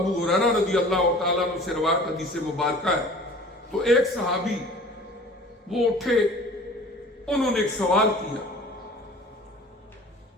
ہریرہ رضی اللہ تعالیٰ عنہ سے روایت حدیث مبارکہ ہے، تو ایک صحابی وہ اٹھے، انہوں نے ایک سوال کیا،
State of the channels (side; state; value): both; normal; correlation 0.45